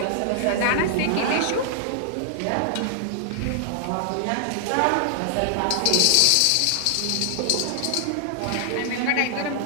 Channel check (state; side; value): different; both; correlation 0.00